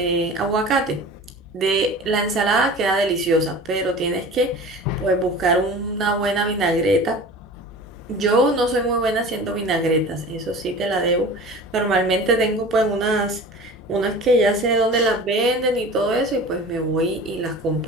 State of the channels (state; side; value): normal; both; correlation 0.38